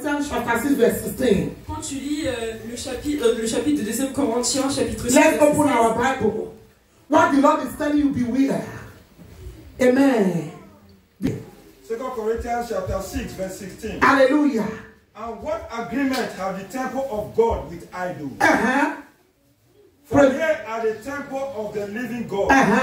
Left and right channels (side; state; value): both; identical; correlation 1.00